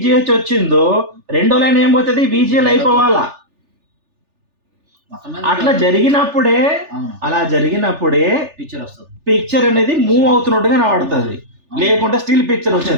వచ్చిందో రెండో లైన్ ఏమవుతుంది? VGL అయిపోవాలా. అట్లా జరిగినప్పుడే పిక్చర్ అనేది మూవ్ అవుతున్నట్టుగా కనబడుతుంది, లేకుంటే స్టిల్ పిక్చర్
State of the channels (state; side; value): late; left; 3.4 ms